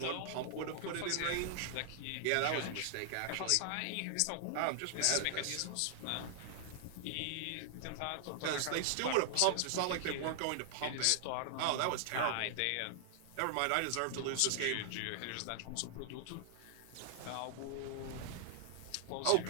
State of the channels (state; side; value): different; both; correlation -0.01